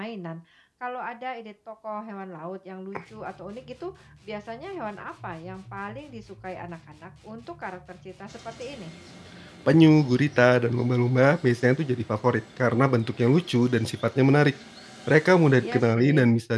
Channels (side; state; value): both; identical; correlation 1.00